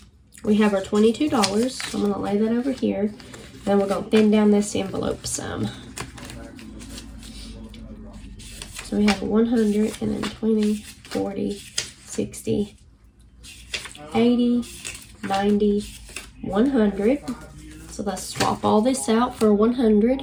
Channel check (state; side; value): identical; both; correlation 1.00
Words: We have our $22, so I'm going to lay that over here. Then we're going to thin down this envelope some. So we have 100, and then 20, 40, 60, 80, 90, 100. So let's swap all this out for 100.